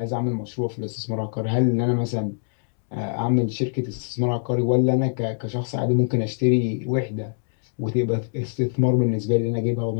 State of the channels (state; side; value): silent; right; digital silence